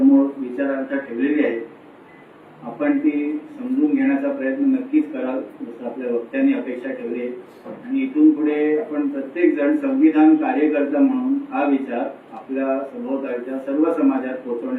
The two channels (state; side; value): identical; both; correlation 1.00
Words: विचारार्थ ठेवलेली आहे. आपण ती समजून घेण्याचा प्रयत्न नक्कीच कराल जसं आपल्या वक्त्यांनी अपेक्षा ठेवली आहे. आणि इथून पुढे आपण प्रत्येक जण संविधान कार्यकर्ता म्हणून हा विचार आपल्या सभोवतालच्या सर्व समाजात